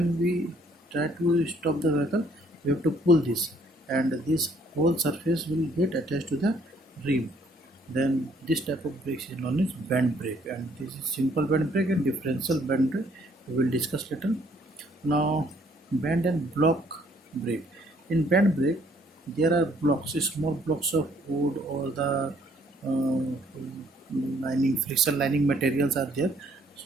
we try to stop the vehicle, we have to pull this, and this whole surface will get attached to the rim. Then this type of brakes is known as band brake, and this is simple band brake and differential band brake. We will discuss later. Now, band and block brake. In band brake, there are blocks, small blocks of wood or the friction lining materials are there.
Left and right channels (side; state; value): both; normal; correlation 0.64